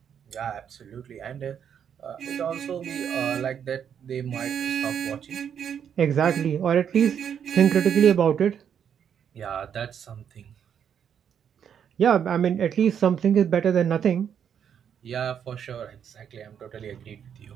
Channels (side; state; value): left; quieter; 8.3 dB